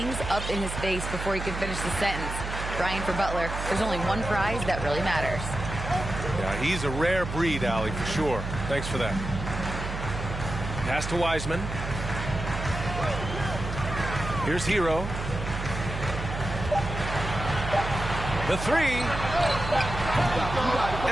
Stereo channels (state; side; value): noise; right; hum, 6 dB below the sound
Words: up in his face before he can finish the sentence. Brian, for Butler, there's only one prize that really matters. Yeah, he's a rare breed, Allie, for sure. Thanks for that. Pass to Wiseman. Here's Hero. The three.